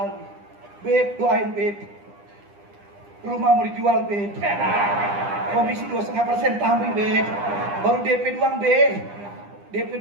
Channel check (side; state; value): left; late; 9.9 ms